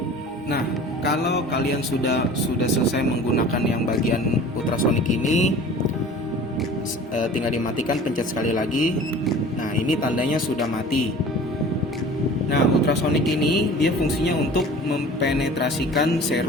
Nah, kalau kalian sudah selesai menggunakan yang bagian ultrasonic ini, tinggal dimatikan, pencet sekali lagi. Nah, ini tandanya sudah mati. Nah, ultrasonic ini dia fungsinya untuk mempenetrasikan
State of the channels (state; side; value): normal; both; correlation 0.42